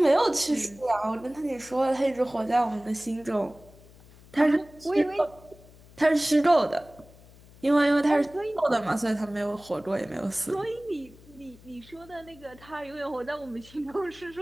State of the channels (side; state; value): left; noise; hum, 23 dB below the sound